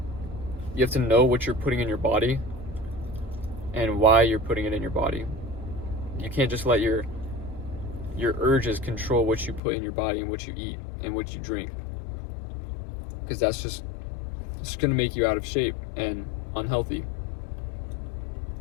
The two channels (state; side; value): drops out; right; at 9.6 s